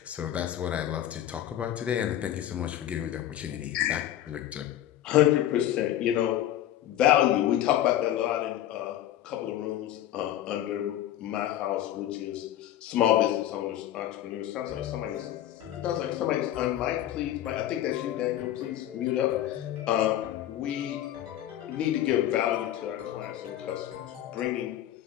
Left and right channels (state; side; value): quieter; right; 12.3 dB